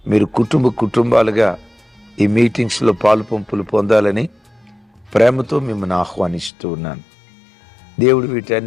మీరు కుటుంబాలుగా ఈ మీటింగ్స్లో పాలుపంపులు పొందాలని ప్రేమతో మిమ్మల్ని ఆహ్వానిస్తూ ఉన్నాను. దేవుడు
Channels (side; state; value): right; drops out; at 6.5 s